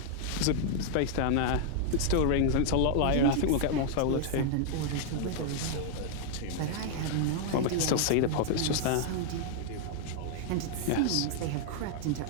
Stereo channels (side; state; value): both; different; correlation -0.01